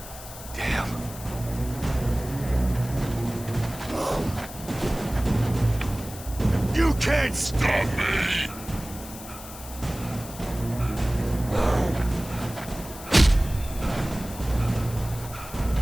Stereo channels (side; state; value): left; noise; hiss, 14 dB below the sound